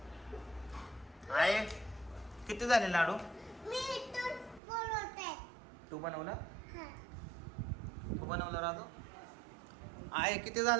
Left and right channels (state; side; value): drops out; left; at 4.6 s